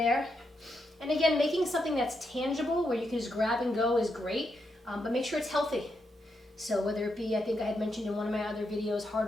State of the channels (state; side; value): normal; both; correlation 0.82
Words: And again, making something that's tangible where you can just grab and go is great, but make sure it's healthy. So whether it be, I think I had mentioned in one of my other videos,